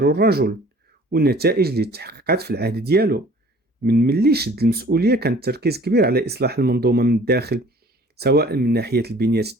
الرجل والنتائج اللي تحققت في العهد ديالو. من ملي شد المسؤولية كان التركيز كبير على إصلاح المنظومة من الداخل، سواء من ناحية البنية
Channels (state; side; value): normal; both; correlation 0.51